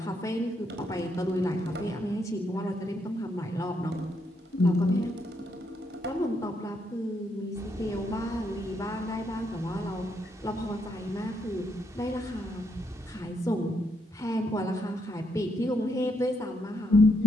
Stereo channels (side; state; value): both; normal; correlation 0.77